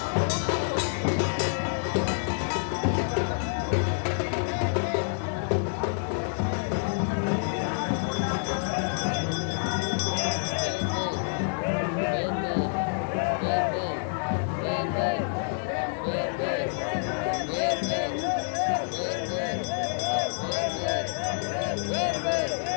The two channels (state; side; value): silent; right; digital silence